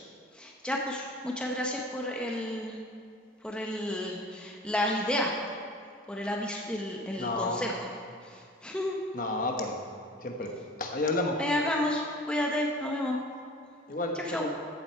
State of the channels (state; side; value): normal; both; correlation 0.42